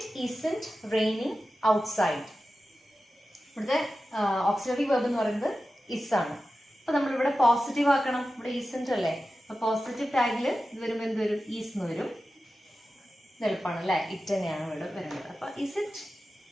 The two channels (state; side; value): normal; both; correlation 0.94